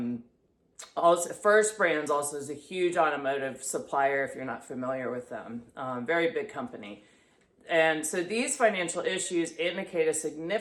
First Brands also is a huge automotive supplier, if you're not familiar with them. Very big company. And so these financial issues indicate a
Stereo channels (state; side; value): identical; both; correlation 1.00